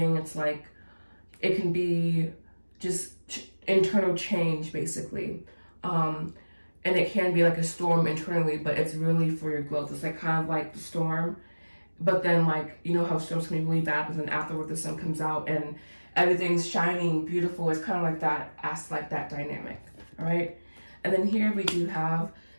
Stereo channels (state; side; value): inverted; both; correlation -1.00